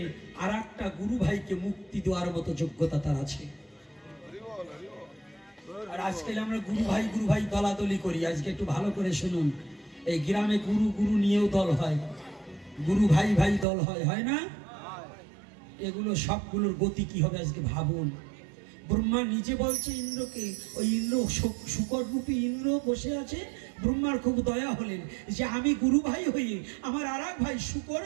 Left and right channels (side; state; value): left; drops out; at 13.7 s